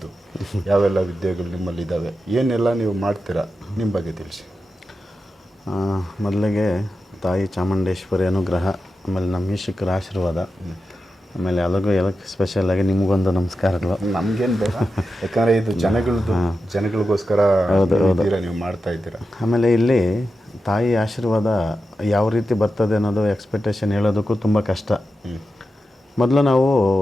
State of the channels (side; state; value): both; normal; correlation 0.90